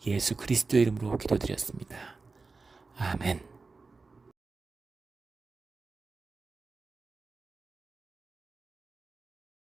예수 그리스도의 이름으로 기도드렸습니다. 아멘.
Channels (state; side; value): quieter; left; 4.0 dB